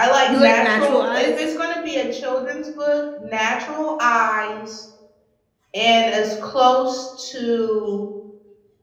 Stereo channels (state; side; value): identical; both; correlation 1.00